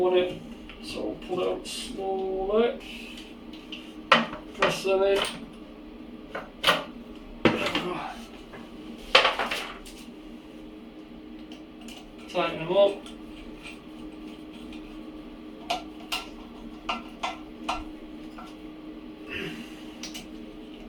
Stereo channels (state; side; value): identical; both; correlation 1.00